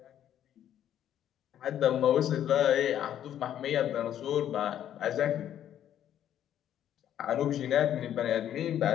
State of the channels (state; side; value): quieter; right; 10.7 dB